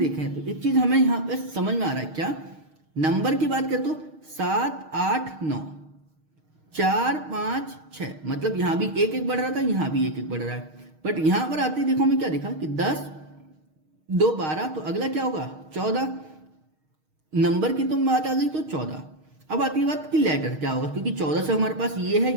तो एक चीज हमें यहाँ पे समझ में आ रहा है क्या, नंबर की बात करें तो 7, 8, 9, 4, 5, 6, मतलब यहाँ भी एक एक बढ़ रहा था, यहाँ भी एक एक बढ़ रहा है। बट यहाँ पर आते ही देखो हमें क्या दिखा कि 10, 2, 12, तो अगला क्या होगा 14। नंबर की तो बात आ गई तो 14। अब आती है बात कि लेटर क्या होगा, क्योंकि 14 से हमारे पास ये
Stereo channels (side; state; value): left; late; 6.4 ms